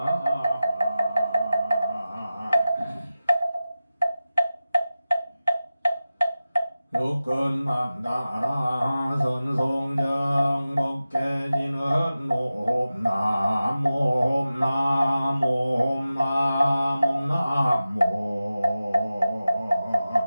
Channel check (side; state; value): both; inverted; correlation -0.94